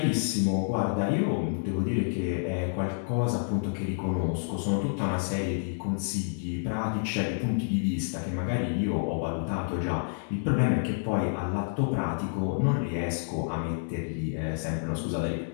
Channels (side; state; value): right; silent; digital silence